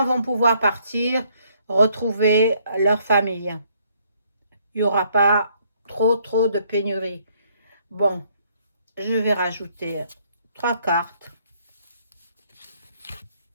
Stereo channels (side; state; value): both; inverted; correlation -0.67